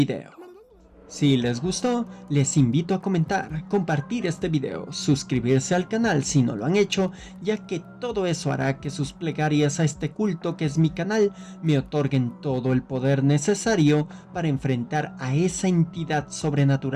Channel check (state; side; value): identical; both; correlation 1.00